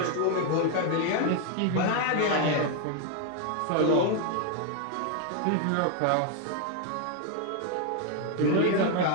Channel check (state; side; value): different; both; correlation 0.01